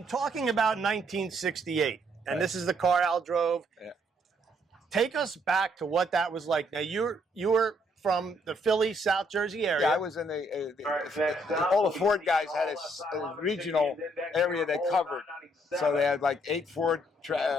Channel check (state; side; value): normal; both; correlation 0.69